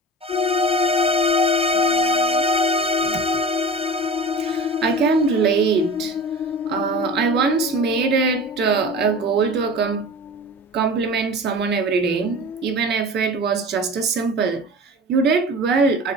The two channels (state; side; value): normal; both; correlation 0.35